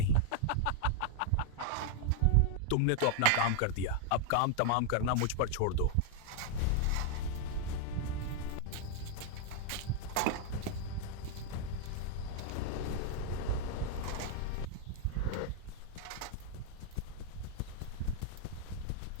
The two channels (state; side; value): different; both; correlation 0.00